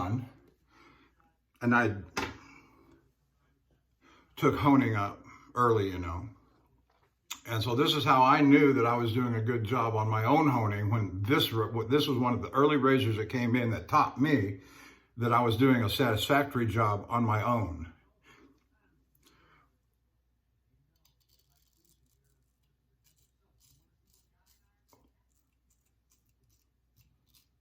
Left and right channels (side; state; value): both; identical; correlation 1.00